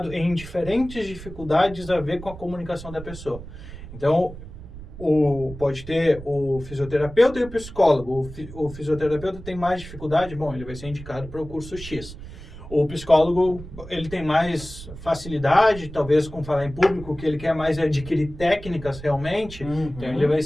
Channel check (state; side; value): noise; right; rumble, 13 dB below the sound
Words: em diferentes dificuldades a ver com a comunicação da pessoa. Então, pode ter o fisioterapeuta e o psicólogo. O fisioterapeuta tem mais dificuldade, bom, ele vai ser indicado para o curso X. O psicólogo, ele tem mais facilidade, talvez com falar em público, o que ele quer mais é adquirir técnicas realmente, então ele vai